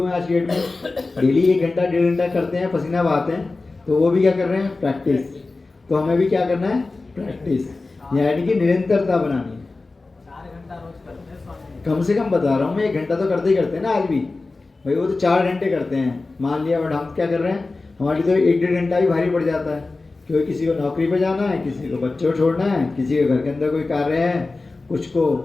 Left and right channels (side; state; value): right; quieter; 3.5 dB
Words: हैं आज की डेट में, डेली 1 घंटा 1.5 घंटा करते हैं, पसीना बहाते हैं, तो वो भी क्या कर रहे हैं, प्रैक्टिस। तो हमें भी क्या करना है, प्रैक्टिस, यानी कि निरंतरता बनानी है। कम से कम बता रहा हूँ मैं, 1 घंटा तो करते ही करते हैं ना आज भी भाई, वो तो 4 घंटे करते हैं मान लिया, बट हम क्या कर रहे हैं, हमारे तो 1-1.5 घंटा भी भारी पड़ जाता है, क्योंकि किसी को नौकरी पे जाना है, किसी को बच्चों छोड़ना है, किसी के घर के अंदर कोई कार्य है, कुछ को